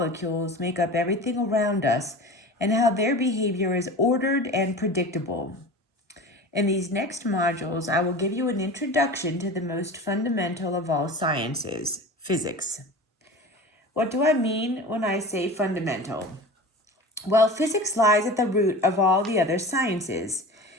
make up everything around us and how their behavior is ordered and predictable. In these next modules, I will give you an introduction to the most fundamental of all sciences, physics. What do I mean when I say fundamental? Well, physics lies at the root of all the other sciences.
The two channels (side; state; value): both; normal; correlation 0.34